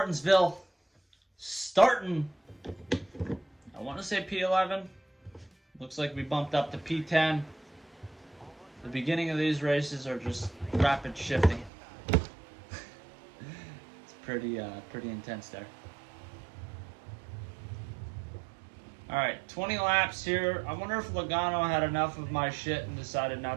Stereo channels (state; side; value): drops out; left; at 11.7 s